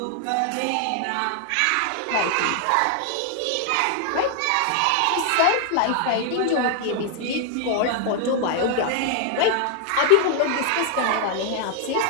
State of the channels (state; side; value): different; both; correlation 0.00